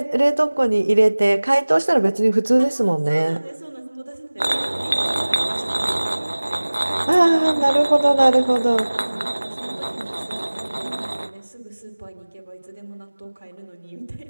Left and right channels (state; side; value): inverted; both; correlation -1.00